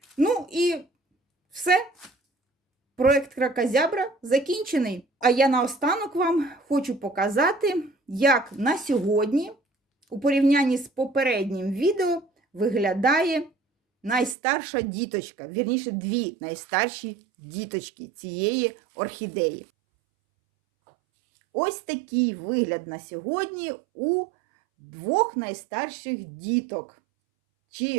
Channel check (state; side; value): drops out; left; at 14.4 s